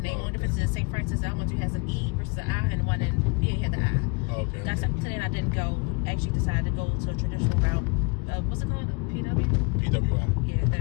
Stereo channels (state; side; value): quieter; right; 30.8 dB